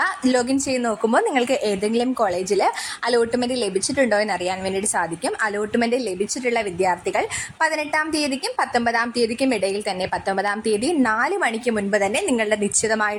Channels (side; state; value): both; identical; correlation 1.00